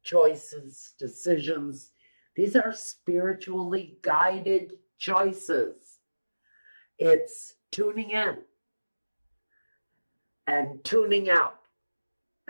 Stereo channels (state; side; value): inverted; both; correlation -1.00